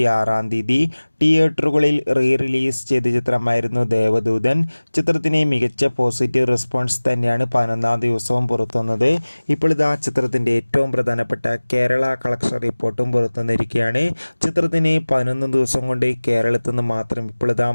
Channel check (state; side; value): inverted; both; correlation -1.00